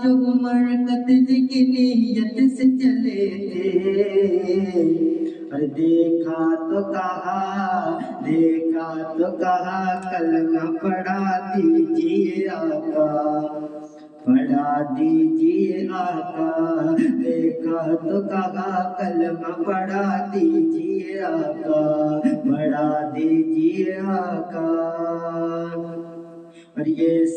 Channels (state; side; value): identical; both; correlation 1.00